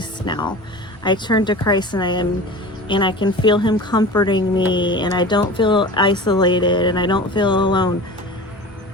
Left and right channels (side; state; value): both; normal; correlation 0.35